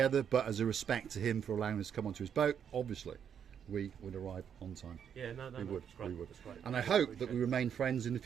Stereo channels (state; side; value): quieter; left; 8.2 dB